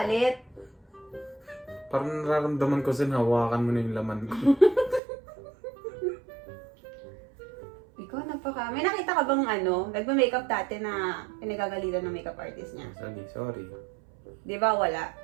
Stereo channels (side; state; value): left; drops out; at 5.0 s